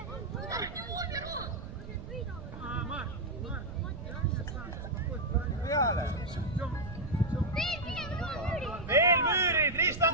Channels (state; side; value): noise; right; rumble, 11 dB below the sound